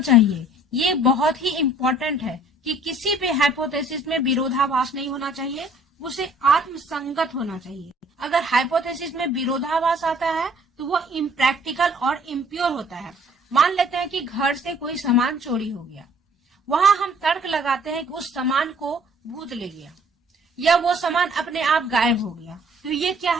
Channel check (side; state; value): both; normal; correlation 0.57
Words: ये बहुत ही इम्पोर्टेंट है कि किसी भी हाइपोथेसिस में विरोधाभास नहीं होना चाहिए, उसे आत्मसंगत होना चाहिए। अगर हाइपोथेसिस में विरोधाभास आता है तो वो इम्प्रैक्टिकल और इम्प्योर होता है। मान लेते हैं कि घर से कोई सामान चोरी हो गया, वहां हम तर्क लगाते हैं कि उस सामान को भूत ले गया या वो सामान अपने आप गायब हो गया, तो ये क्या